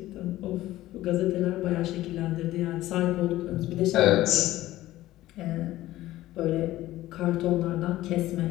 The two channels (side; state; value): right; quieter; 15.7 dB